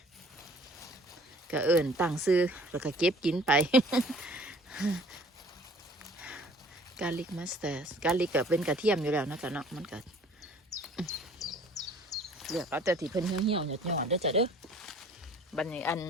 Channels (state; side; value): normal; both; correlation 0.52